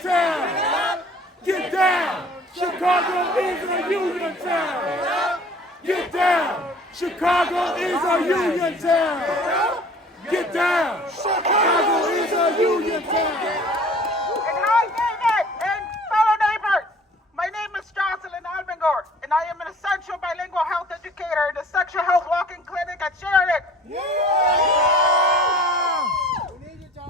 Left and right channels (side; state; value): both; normal; correlation 0.50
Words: Get down! Chicago is a union town! Get down! Chicago is a union town! Get down! Chicago is a union town! And hi, David, and fellow neighbors. My name is Jocelyn Alvengor, and I am an essential bilingual health educator in the sexual health walk-in clinic at Sheridan.